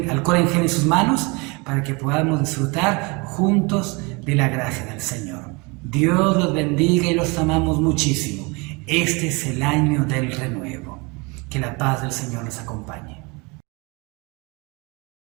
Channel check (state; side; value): quieter; left; 28.2 dB